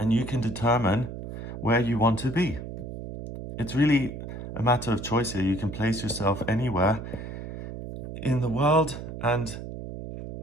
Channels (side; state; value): right; noise; hum, 9 dB below the sound